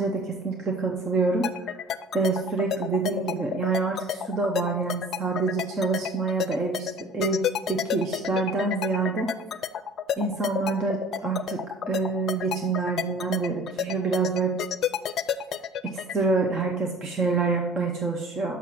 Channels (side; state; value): both; normal; correlation 0.46